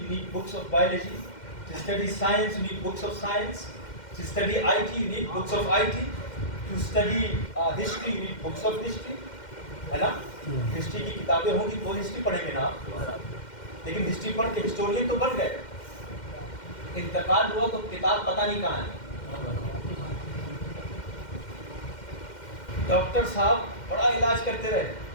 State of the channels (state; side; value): late; right; 2.1 ms